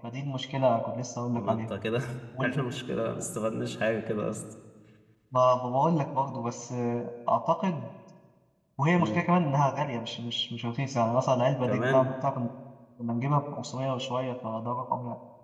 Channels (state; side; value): identical; both; correlation 1.00